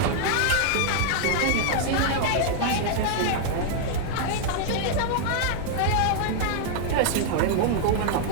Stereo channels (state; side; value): different; both; correlation 0.00